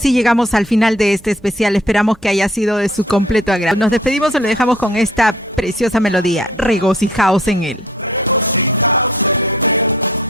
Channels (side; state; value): both; normal; correlation 0.56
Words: llegamos al final de este especial. Esperamos que haya sido de su completo agrado. Nos despedimos y lo dejamos con esta preciosa melodía. Regocijaos en él. Regocijaos en él,